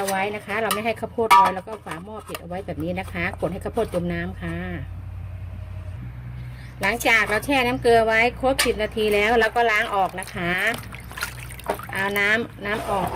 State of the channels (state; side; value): identical; both; correlation 1.00